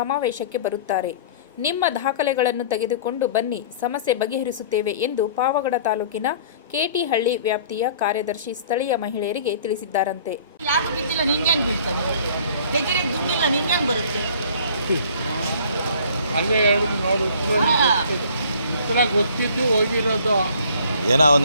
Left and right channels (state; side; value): inverted; both; correlation -0.50